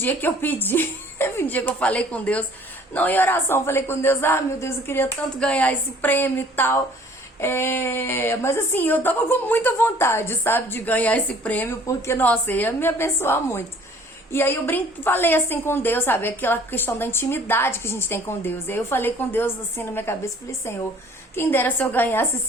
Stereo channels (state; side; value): normal; both; correlation 0.54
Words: que eu pedi, teve um dia que eu falei com Deus, não em oração, falei com Deus, meu Deus, eu queria tanto ganhar esse prêmio e tal. Mas assim, eu tava com muita vontade, sabe, de ganhar esse prêmio, porque, nossa, ia me abençoar muito. E aí eu falei assim com Deus, sabe, aquela questão da intimidade que a gente tem com Deus. E aí eu falei com Deus assim na minha cabeça, falei, Senhor, quem dera se eu